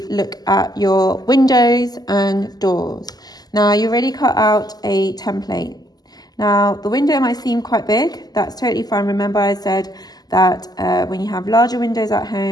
look at your windows and doors. Now, you already cut out a template. Now, the window might seem quite big. That's totally fine. Remember, I said that when you have larger windows at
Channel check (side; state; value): right; late; 0.19 ms